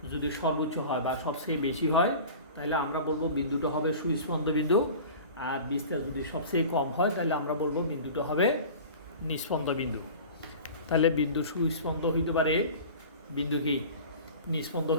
যদি সর্বোচ্চ হয় বা সবচেয়ে বেশি হয় তাহলে আমরা বলবো বিন্দুটা হবে সুস্পন্দ বিন্দু, আর বিস্তার যদি সবচেয়ে কম হয় তাহলে আমরা বলবো বিন্দুটা হবে নিস্পন্দ বিন্দু। তাহলে বিন্দু সুস্পন্দ হইতে পারে, বিন্দু কি নিস্পন্দ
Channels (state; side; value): inverted; both; correlation -0.38